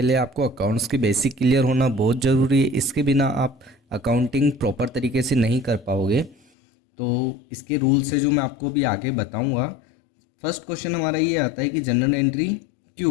आपको अकाउंट्स की बेसिक क्लियर होना बहुत ज़रूरी है। इसके बिना आप अकाउंटिंग प्रॉपर तरीके से नहीं कर पाओगे। तो इसके रूल्स है जो मैं आपको भी आगे बताऊंगा। फर्स्ट क्वेश्चन हमारा ये आता है कि जनरल एंट्री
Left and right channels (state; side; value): drops out; right; at 6.4 s